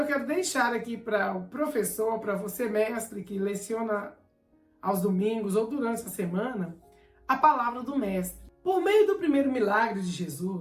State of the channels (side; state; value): both; identical; correlation 1.00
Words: quero deixar aqui para o professor, para você mestre que leciona aos domingos ou durante a semana, a palavra do mestre. Por meio do primeiro milagre de